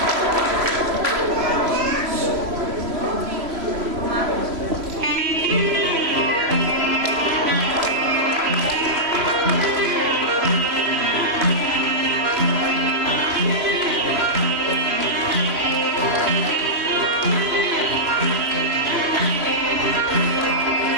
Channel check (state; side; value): late; left; 3.0 ms